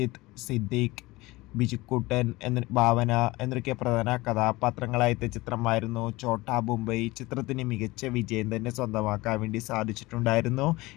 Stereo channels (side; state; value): right; quieter; 20.9 dB